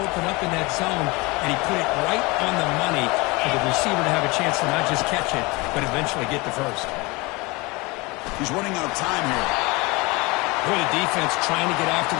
open up in that zone, and he put it right on the money for the receiver to have a chance to not just catch it, but eventually get the first. He's running out of time here. Boy, the defense trying to get after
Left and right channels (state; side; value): quieter; right; 24.9 dB